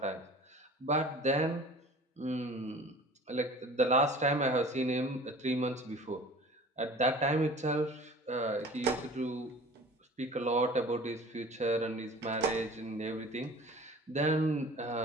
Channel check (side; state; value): both; normal; correlation 0.43